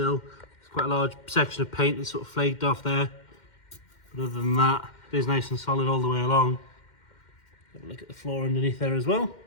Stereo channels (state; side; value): late; right; 2.1 ms